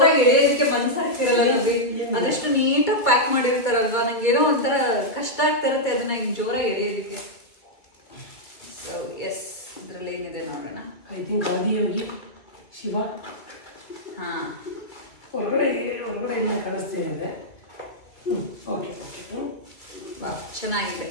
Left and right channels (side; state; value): right; late; 2.3 ms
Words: ಎಳೆಯೋದಕ್ಕೆ ಮನ್ಸಾಗ್ತಿರಲ್ಲ ನವೀನ್. ಅದೆಷ್ಟು ನೀಟಾಗಿ ಪ್ಯಾಕ್ ಮಾಡಿರ್ತಾರಲ್ವಾ, ನಂಗೇನೋ ಒಂಥರ ಕಷ್ಟ ಆಗ್ತಾ ಇರುತ್ತೆ ಅದನ್ನ ಹಿಂಗೆ ಜೋರಾಗಿ ಎಳೆಯೋದಕ್ಕೆ. ಸೊ ಎಸ್, ಇದ್ರಲ್ಲಿ ಏನಿದೆ ನೋಡೋಣ. I think Adiyogi Shiva. ಹಾ, ಹೊರಗಡೆ ಎಲ್ಲ ಕಾಣಿಸ್ತಾ ಇದೆ. ಓಕೆ, ಚೆನ್ನಾಗಿದೆ.